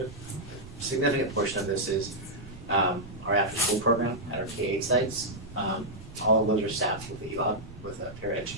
significant portion of this is our after-school program at our K-8 sites. All of those are staffed with ELOB, with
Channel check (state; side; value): noise; right; rumble, 18 dB below the sound